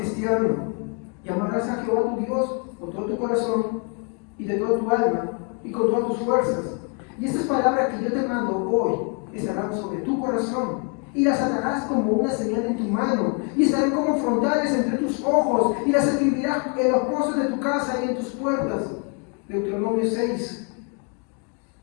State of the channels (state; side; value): quieter; right; 38.0 dB